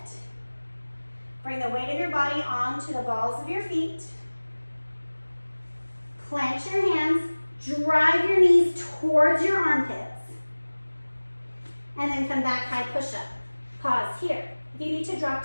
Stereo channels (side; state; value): both; inverted; correlation -1.00